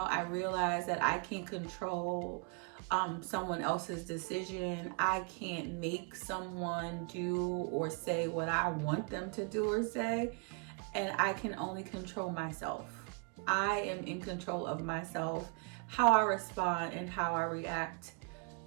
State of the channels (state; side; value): quieter; left; 37.0 dB